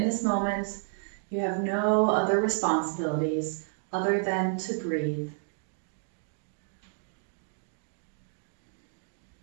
this moment, you have no other responsibilities other than to breathe.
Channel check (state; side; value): silent; left; 57 dB below the other